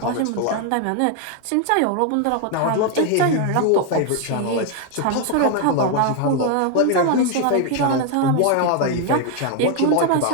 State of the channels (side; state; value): both; different; correlation 0.00